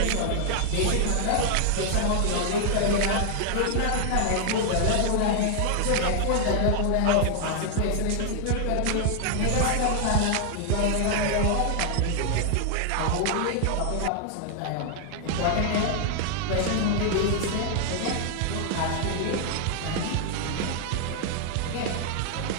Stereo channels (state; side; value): different; both; correlation 0.00